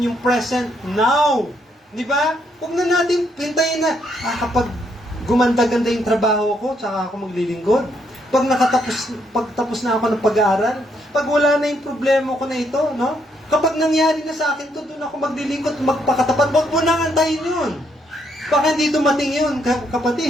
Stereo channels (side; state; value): both; normal; correlation 0.74